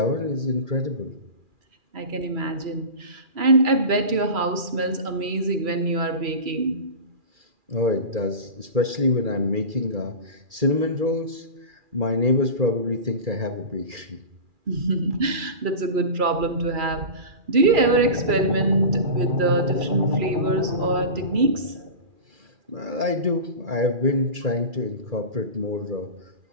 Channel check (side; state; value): left; late; 2.4 ms